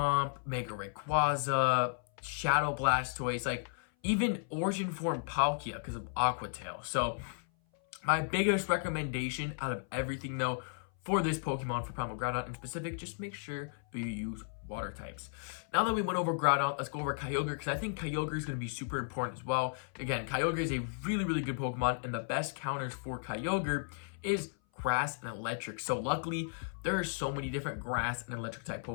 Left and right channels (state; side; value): silent; right; 55 dB below the other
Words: Mega Rayquaza, Shadow Blastoise, like even Origin Form Palkia because of Aqua Tail. So my biggest recommendation out of everything though for this Pokemon, for Primal Groudon in specific, just make sure you use water types. Now that we went over Groudon, let's go over Kyogre, because I think Kyogre is going to be super important as well. Again, Kyogre is a really, really good Pokemon, and the best counters for Kyogre is grass and electric. So luckily, there are so many different grass and electric type